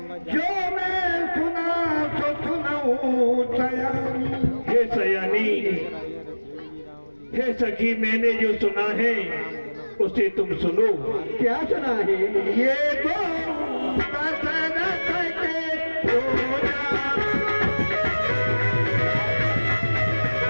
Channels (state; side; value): inverted; both; correlation -1.00